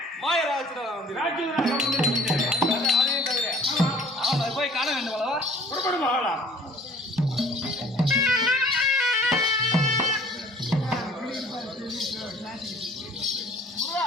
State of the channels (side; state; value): both; normal; correlation 0.52